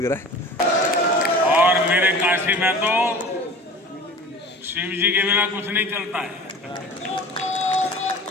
रहा है। और मेरे काशी में तो शिव जी के बिना कुछ नहीं चलता है।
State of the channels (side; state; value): both; normal; correlation 0.40